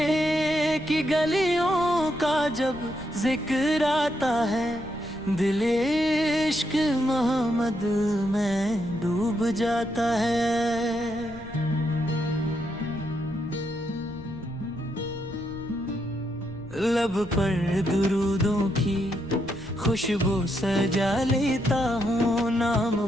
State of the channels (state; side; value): noise; left; rumble, 17 dB below the sound